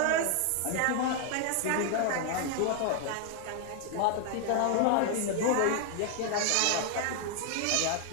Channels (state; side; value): different; both; correlation 0.00